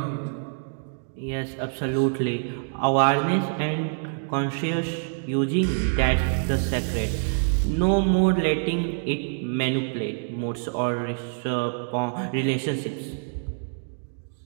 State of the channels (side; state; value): left; silent; digital silence